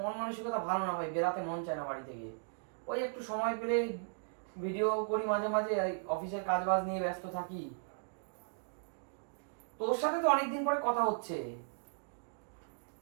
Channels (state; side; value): silent; left; digital silence